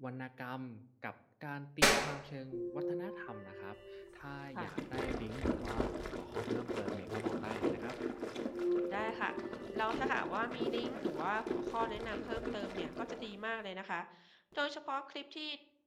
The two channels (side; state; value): both; identical; correlation 1.00